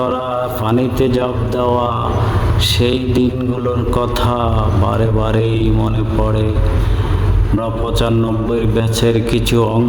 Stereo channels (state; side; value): identical; both; correlation 1.00